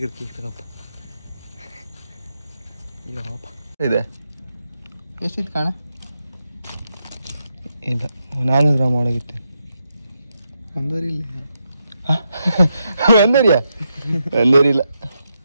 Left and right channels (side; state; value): both; inverted; correlation -0.83